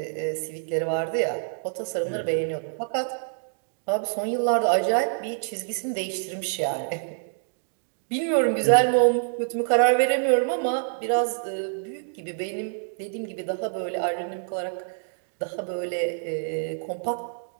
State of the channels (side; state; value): left; silent; digital silence